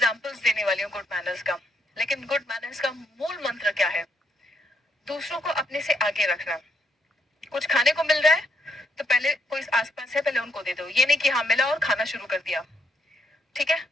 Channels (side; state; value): both; normal; correlation 0.75